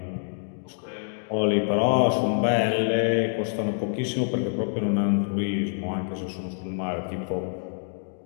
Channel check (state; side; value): silent; right; digital silence